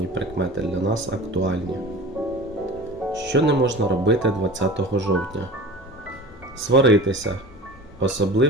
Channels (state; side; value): normal; both; correlation 0.37